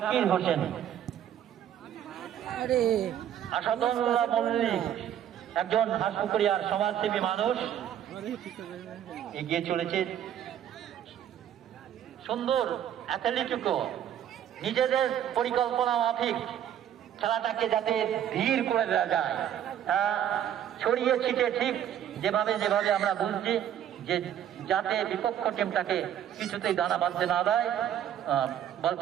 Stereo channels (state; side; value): quieter; left; 10.3 dB